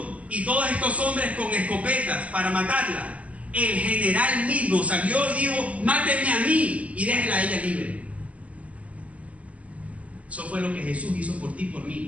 y todos estos hombres con escopetas para matarla, el general mismo salió y dijo: mátenme a mí y déjenla a ella libre. Eso fue lo que Jesús hizo por ti y por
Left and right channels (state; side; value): late; left; 0.069 ms